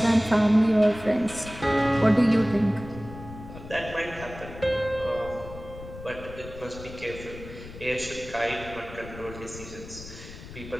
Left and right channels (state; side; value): noise; left; rumble, 14 dB below the sound